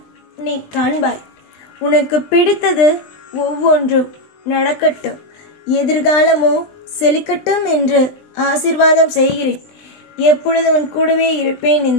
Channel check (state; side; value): late; right; 20 ms